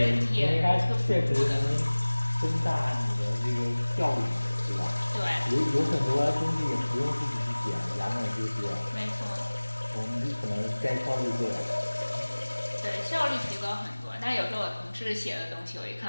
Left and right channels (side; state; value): both; inverted; correlation -1.00